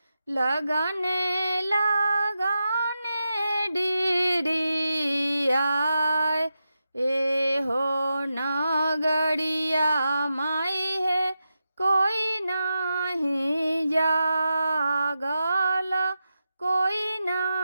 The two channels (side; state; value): both; inverted; correlation -0.89